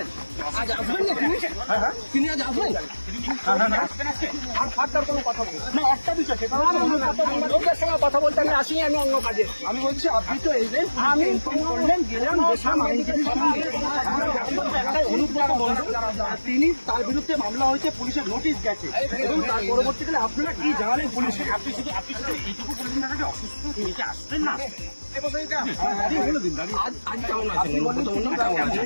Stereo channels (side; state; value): both; inverted; correlation -1.00